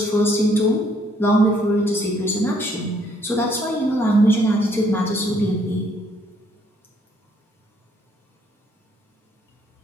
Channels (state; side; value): normal; both; correlation 0.67